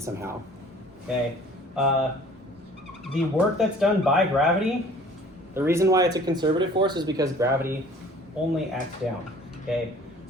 okay? The work that's done by gravity, the reason why it's a conservative force is because gravity only acts down, okay?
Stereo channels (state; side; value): normal; both; correlation 0.50